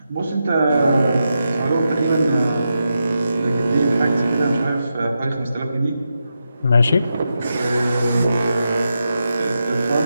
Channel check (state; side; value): inverted; both; correlation -0.87